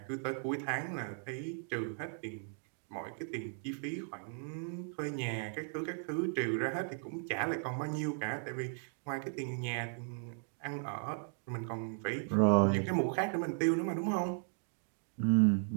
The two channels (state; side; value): silent; left; 53 dB below the other